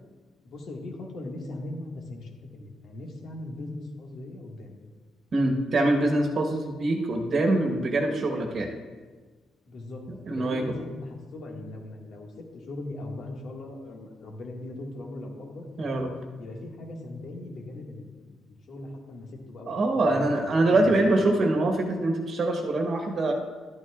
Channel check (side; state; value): both; normal; correlation 0.85